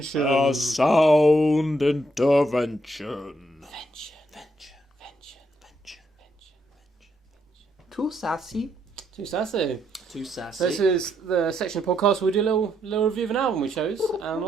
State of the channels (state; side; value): normal; both; correlation 0.76